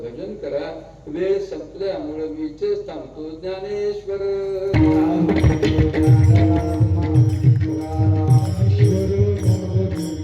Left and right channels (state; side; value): identical; both; correlation 1.00